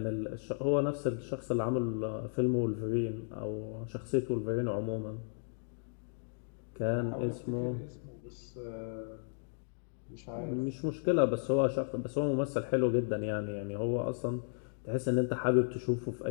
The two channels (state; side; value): silent; right; digital silence